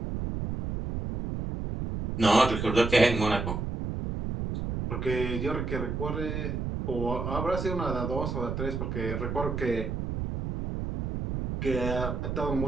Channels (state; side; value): noise; right; rumble, 3 dB below the sound